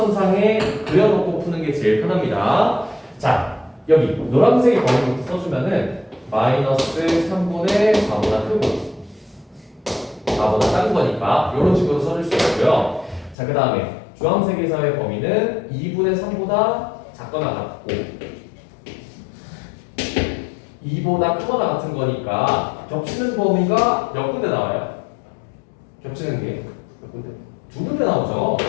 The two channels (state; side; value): drops out; right; at 13.4 s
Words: 그려놓고 푸는 게 제일 편합니다. 자, 여기 노란색의 범위부터 써주면은 마이너스 3분의 4보다 크고 4보다 작은 거니까 이런 식으로 써줄 수 있고요. 자, 그 다음에 주황색에서의 범위는 2분의 3보다 작거나 같고 2보다 크거나 같은 거니까 겹치는 범위가 몇 군데 나와요? 겹치는 게 몇 군데? 두 군데 나오죠.